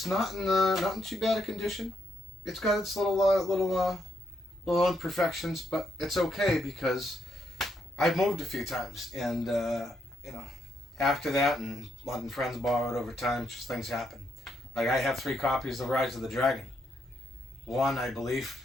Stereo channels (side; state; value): both; normal; correlation 0.78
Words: not in too bad a condition. It's got its little imperfections, but it's okay because I've moved a few times, and after that, and letting friends borrow it over time, just things happen. Like, I have 3 copies of Rise of the Dragon. One, I believe,